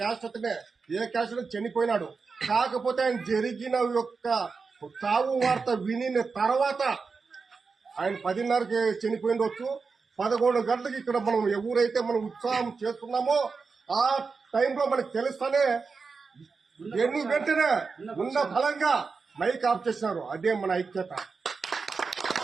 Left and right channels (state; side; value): quieter; left; 4.8 dB